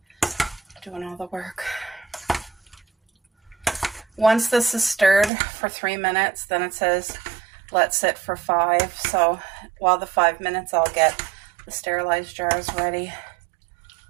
doing all the work. Once this is stirred for 3 minutes, then it says let sit for 5. So while the 5 minutes, I'll get the sterilized jars ready.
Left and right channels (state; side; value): drops out; left; at 5.3 s